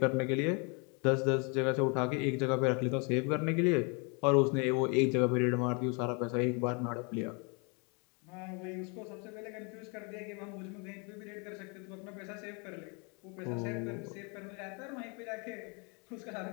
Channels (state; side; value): quieter; right; 33.4 dB